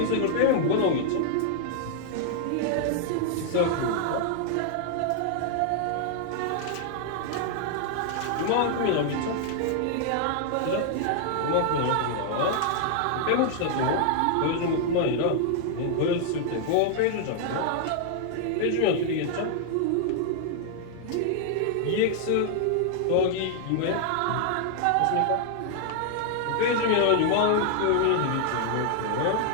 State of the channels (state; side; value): different; both; correlation 0.00